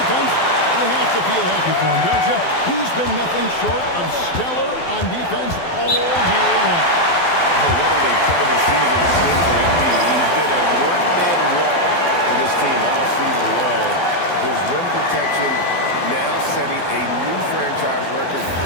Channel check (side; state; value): right; late; 12 ms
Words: you have to feel happy for him, don't you? He's been nothing short of stellar on defense all year long. Oh, what an incredible season it's been for MP. He's been a one-man wall for this team all season long. His rim protection now setting a new franchise record